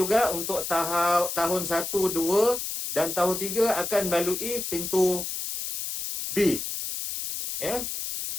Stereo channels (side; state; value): left; noise; hiss, 5 dB below the sound